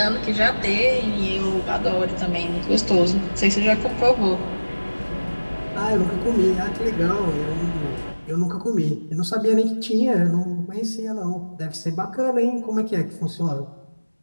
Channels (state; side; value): inverted; both; correlation -1.00